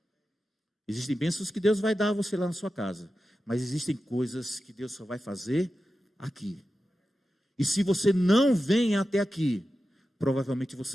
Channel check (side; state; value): both; normal; correlation 0.92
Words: Existem bênçãos que Deus vai dar a você lá na sua casa, mas existem coisas que Deus só vai fazer aqui. E se você não vem até aqui, provavelmente